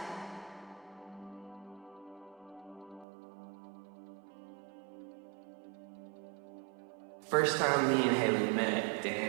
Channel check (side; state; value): left; drops out; at 3.1 s